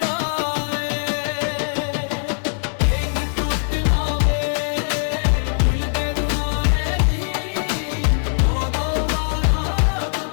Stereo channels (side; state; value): right; silent; digital silence